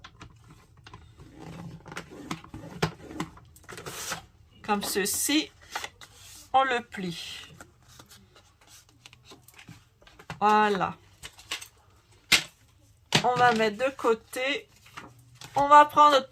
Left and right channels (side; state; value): both; identical; correlation 1.00